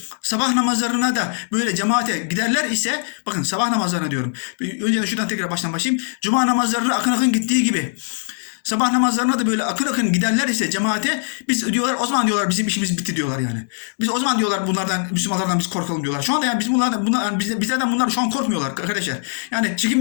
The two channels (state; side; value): silent; right; digital silence